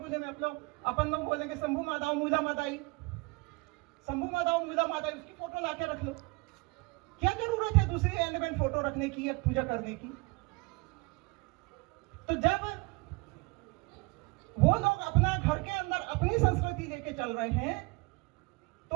में अपन लोग बोलेंगे शंभू मादाओ मूला मादाई, शंभू मादाओ मूला मादाई, उसकी फोटो लाके रख लो। क्या जरूरत है दूसरी एलिमेंट फोटो रखने की या पूजा करने की? तो जब वो लोग अपना घर के अंदर अपनी संस्कृति लेके चल रहे हैं,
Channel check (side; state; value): left; quieter; 26.8 dB